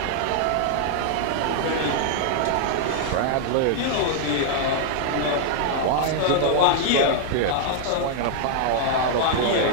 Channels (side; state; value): both; different; correlation -0.01